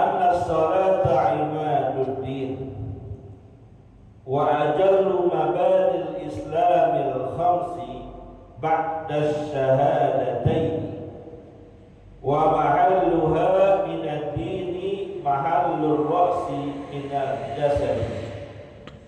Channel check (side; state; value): both; identical; correlation 1.00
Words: as-salata imaduddin wa ajallu mabadil islamil khamsi ba'da syahadatain wa mahalluha minad dini mahallur ra'si minal jasad,